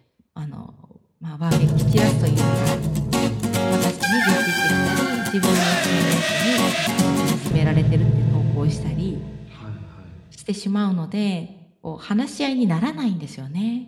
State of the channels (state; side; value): identical; both; correlation 1.00